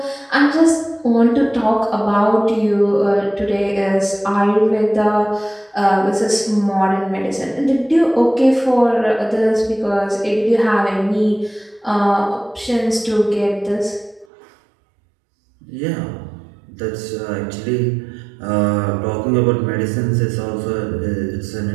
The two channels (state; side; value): drops out; left; at 14.2 s